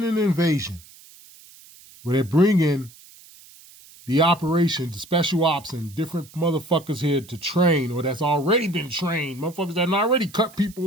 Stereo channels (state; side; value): noise; right; hiss, 23 dB below the sound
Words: an invasion where they're bringing the operation, the special ops, and different motherfuckers here to train, or that's already been trained, motherfuckers that already cut